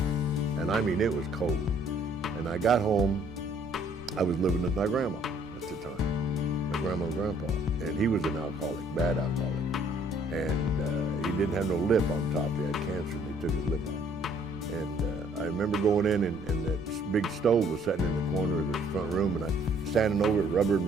And it was cold. And I got home, I was living with my grandma at the time, my grandma and grandpa. And he was an alcoholic, bad alcoholic. And he didn't have no lip on top. He had cancer, and they took his lip off. And I remember going in, and that big stove was sitting in the corner of the front room, and I standing over it, rubbing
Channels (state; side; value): normal; both; correlation 0.62